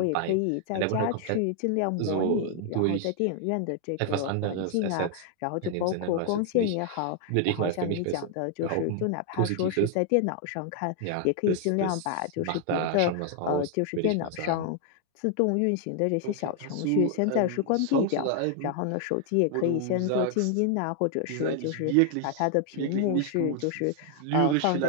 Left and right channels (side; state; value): both; different; correlation 0.00